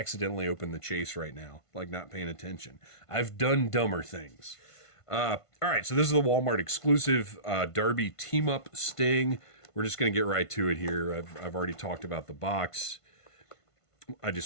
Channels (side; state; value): right; late; 1.5 ms